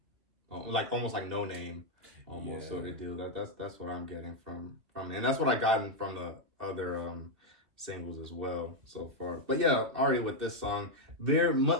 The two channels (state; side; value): late; left; 2.6 ms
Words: almost like No Name, almost sort of deal. That's what I'm getting from, and that's what I gotten from the other singles as well so far. But yeah, Ari with this song, very